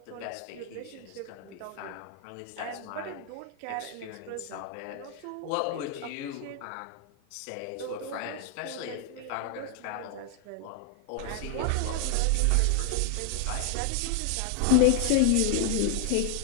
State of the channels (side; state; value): both; different; correlation 0.00